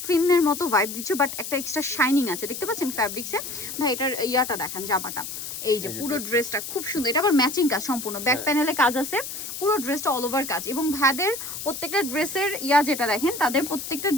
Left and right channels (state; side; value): noise; left; hiss, 8 dB below the sound